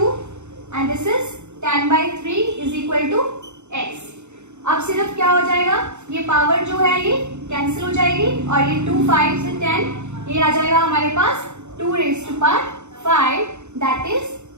and this is 10/3 is equal to x। अब सिर्फ क्या हो जाएगा, ये पावर जो है ये कैंसिल हो जाएगी और ये 2 5 से 10 ये आ जाएगा हमारे पास 2 raised to power 5 that is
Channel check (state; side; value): late; left; 0.83 ms